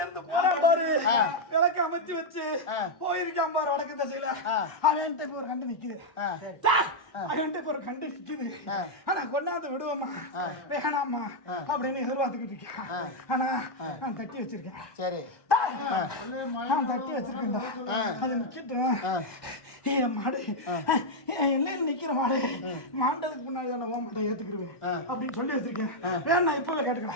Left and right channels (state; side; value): late; right; 1.2 ms